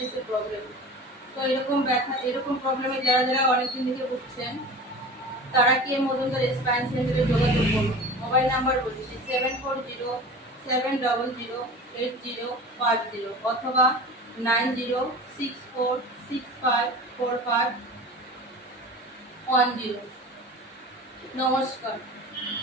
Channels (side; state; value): both; normal; correlation 0.36